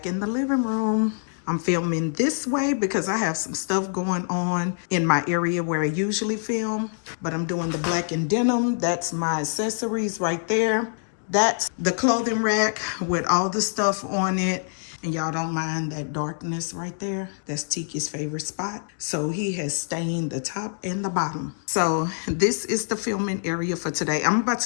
in the living room. I'm filming this way because I have some stuff going on in my area where I usually film. But I'm doing the black and denim. That's my accessories right there. That's the clothing rack with all the stuff on it. And y'all don't mind that darkness right there. That's Tiki's favorite spot. So he has stained the top and the bottom. So this is the filming area for today. I'm about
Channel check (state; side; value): silent; right; digital silence